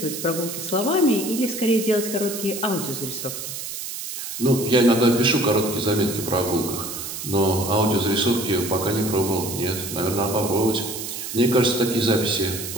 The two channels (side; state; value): right; noise; hiss, 7 dB below the sound